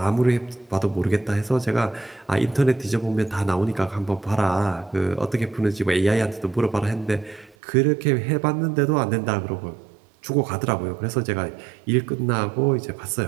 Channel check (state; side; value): drops out; left; at 7.6 s